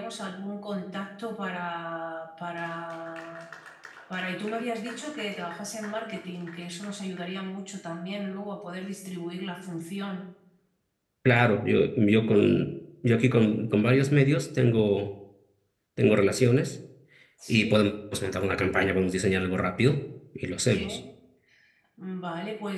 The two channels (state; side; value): identical; both; correlation 1.00